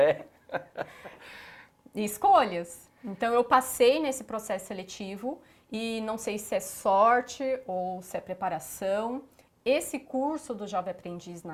Escolhas. Então, eu passei nesse processo seletivo e não sei se é sorte ou se é preparação. Esse curso do Jovem Aprendiz,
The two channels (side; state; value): both; identical; correlation 1.00